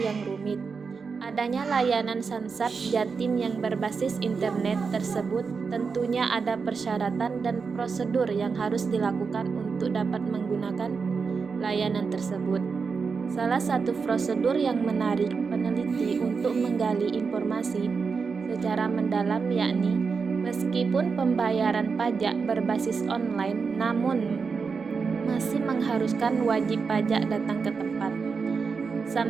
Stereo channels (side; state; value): left; quieter; 5.2 dB